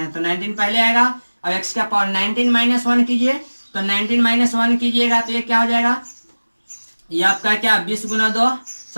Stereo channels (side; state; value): both; inverted; correlation -1.00